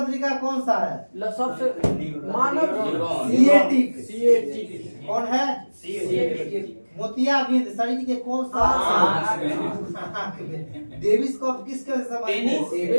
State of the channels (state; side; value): inverted; both; correlation -1.00